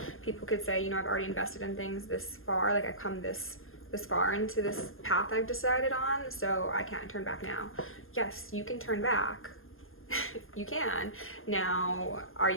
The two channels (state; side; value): late; right; 0.60 ms